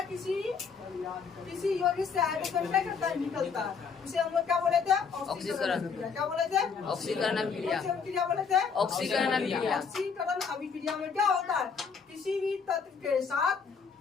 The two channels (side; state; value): right; quieter; 5.8 dB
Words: किसी यौगिक से हाइड्रोजन क्या करता है, निकलता है। उसे हम लोग क्या बोले थे, ऑक्सीकरण। क्या बोले थे, ऑक्सीकरण अभिक्रिया। अभिक्रिया बोले थे, ऑक्सीकरण अभिक्रिया। ऑक्सीकरण अभिक्रिया में क्या होता है, किसी भी तत्व के